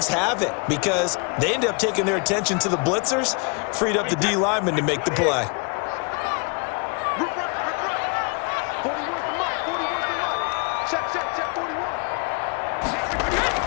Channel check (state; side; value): quieter; right; 35.1 dB